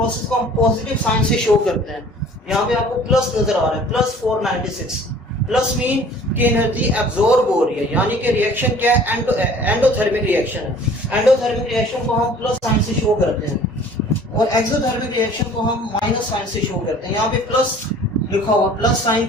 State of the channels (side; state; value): both; normal; correlation 0.50